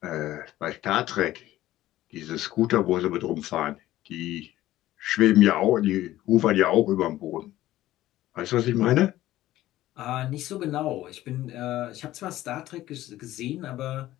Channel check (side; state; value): right; quieter; 15.0 dB